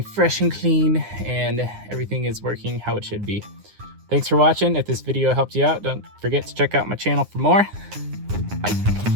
fresh and clean, and everything is working how it should be. Thanks for watching. If this video helped you out, don't forget to check out my channel for more.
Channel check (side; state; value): left; late; 9.7 ms